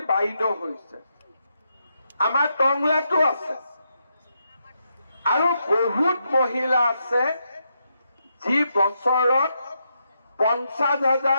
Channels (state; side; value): inverted; both; correlation -0.81